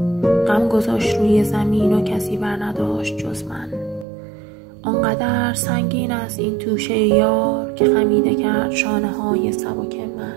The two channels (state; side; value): drops out; left; at 4.0 s